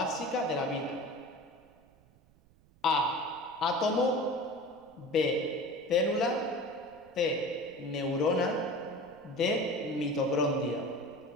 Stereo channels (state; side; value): noise; right; rumble, 29 dB below the sound